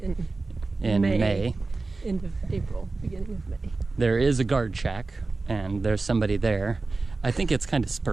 May. End of April, beginning of May. There is a guard shack, and there's somebody there. I think it's kind of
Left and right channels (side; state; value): left; quieter; 3.6 dB